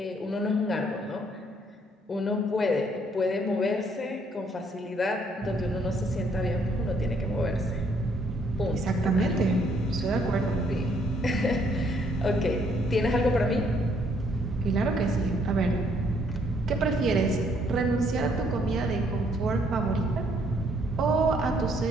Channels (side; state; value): both; normal; correlation 0.67